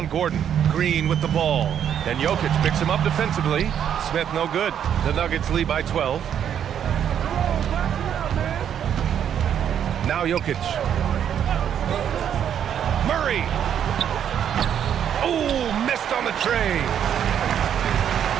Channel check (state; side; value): quieter; left; 9.1 dB